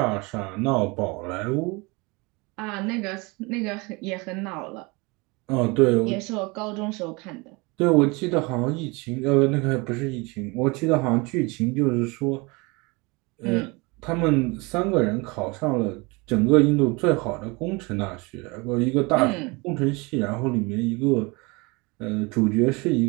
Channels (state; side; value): quieter; left; 26.7 dB